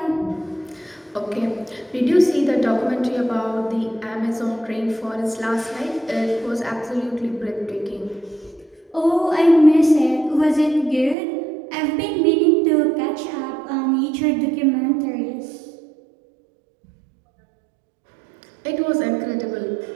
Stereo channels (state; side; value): drops out; left; at 11.2 s